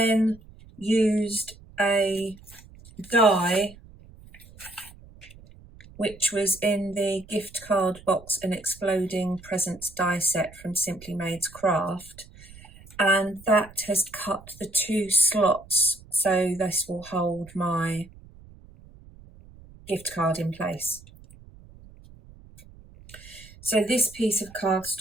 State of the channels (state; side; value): noise; right; rumble, 21 dB below the sound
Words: used a die which was in the gift card box, an exploding presents die set from Simply Made's Craft, and that has cut the 2 slots so this will hold my gift card in place. So this piece of